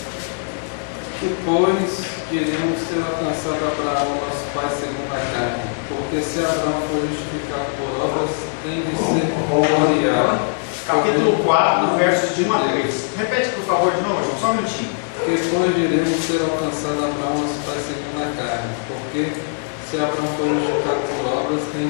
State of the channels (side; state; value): right; silent; 57 dB below the other